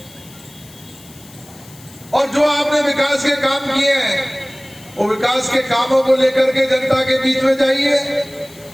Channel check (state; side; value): noise; left; hiss, 22 dB below the sound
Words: और जो आपने विकास के काम किए हैं, वो विकास के कामों को लेकर के जनता के बीच में जाइए।